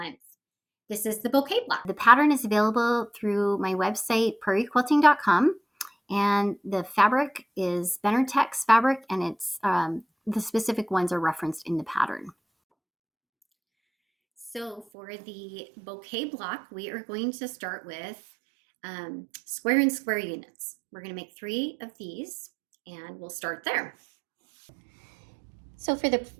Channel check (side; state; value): left; drops out; at 14.9 s